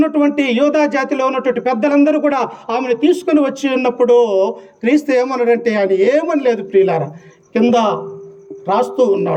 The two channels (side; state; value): both; identical; correlation 1.00